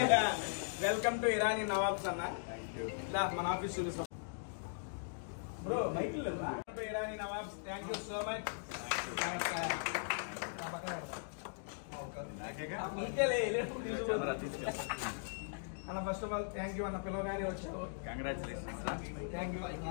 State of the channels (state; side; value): silent; right; digital silence